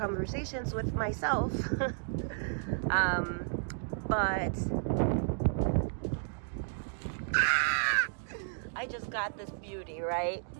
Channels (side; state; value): left; silent; digital silence